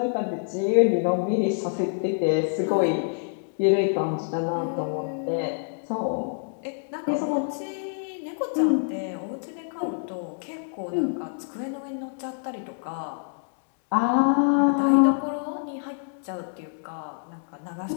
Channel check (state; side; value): silent; right; digital silence